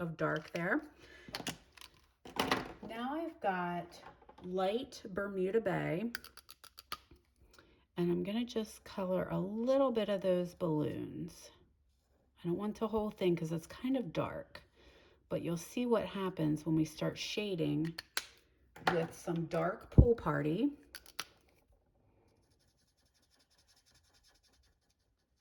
dark there. Now I've got light Bermuda Bay, and I'm going to just color a little bit of those balloons. I don't want the whole thing because it's kind of dark, but you'll see what happens when we start shading with some dark Pool Party.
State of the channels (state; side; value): identical; both; correlation 1.00